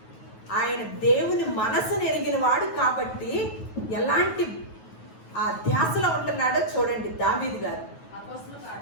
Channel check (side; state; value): right; late; 9.3 ms